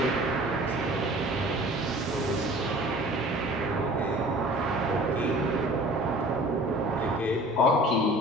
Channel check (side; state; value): both; normal; correlation 0.46